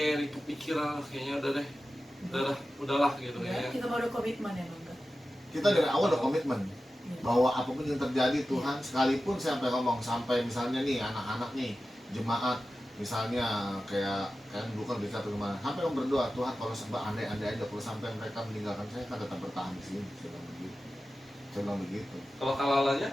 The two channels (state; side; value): normal; both; correlation 0.94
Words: kepikiran kayaknya udahlah gitu Ya, kayaknya. kita baru komitmen ya bang. Kita dari awal udah komitmen Iya. bahwa apapun yang terjadi Tuhan, sekalipun saya sampai ngomong sampai misalnya nih anak-anak nih jemaat misalnya kayak dulu kan bisa atau kemana, sampai om berdoa Tuhan kalau andai-andai aja kalau sampai mereka meninggalkan saya kan tetap bertahan di sini. Saya bilang begitu. Kalau kalalanya